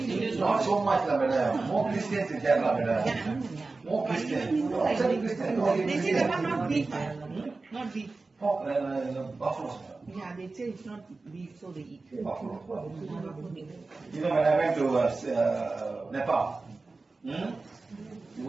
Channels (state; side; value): quieter; left; 3.7 dB